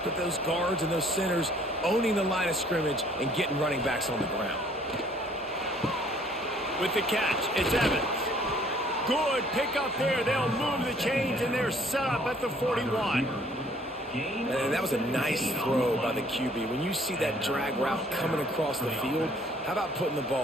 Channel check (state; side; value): normal; both; correlation 0.60